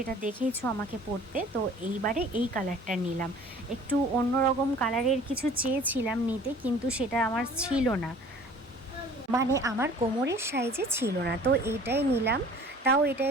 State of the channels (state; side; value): normal; both; correlation 0.49